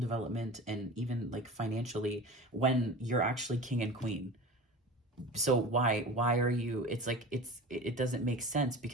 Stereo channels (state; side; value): normal; both; correlation 0.34